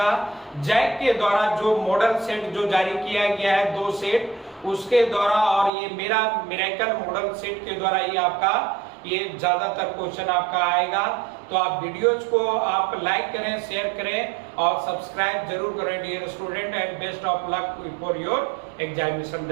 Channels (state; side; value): drops out; left; at 5.7 s